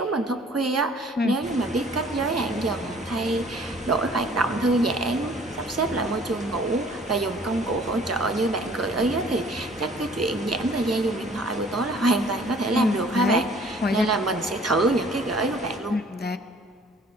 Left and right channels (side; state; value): both; normal; correlation 0.54